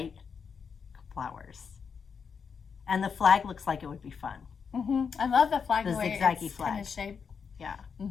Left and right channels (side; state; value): right; quieter; 6.2 dB